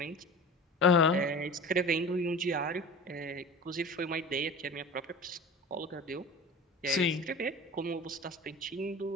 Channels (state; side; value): normal; both; correlation 0.36